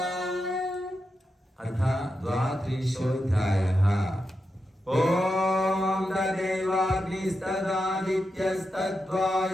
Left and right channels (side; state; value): both; normal; correlation 0.88